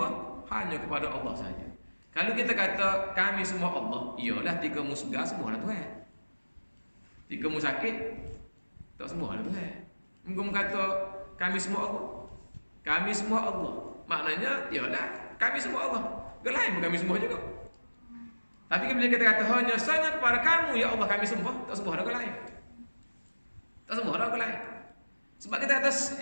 hanya kepada Allah saja. Kalau kita kata kami semua Allah, iyalah tika mu segar semua lah Tuhan. Tika mu sakit tak semua lah Tuhan. Engkau kata kami semua Allah. Kami semua Allah. Maknanya iyalah kami semua Allah. Gelain kami semua juga. Tapi bila kita kata hanya sahaja kepada kamu ya Allah kami sembah, tak sembah orang lain. Tak sembah orang lain. Sebab kita kata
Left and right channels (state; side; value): inverted; both; correlation -1.00